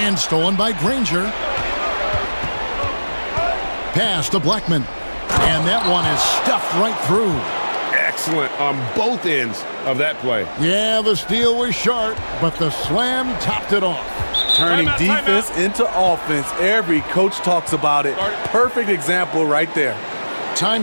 And stolen by Granger. Pass to Blackman. And that one is stuffed right through. Excellent on both ends of that play. Yeah, the steal was sharp, but the slam topped it off. Turning defense into offense. Every coach talks about it. Perfect example right there.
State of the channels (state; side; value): inverted; both; correlation -1.00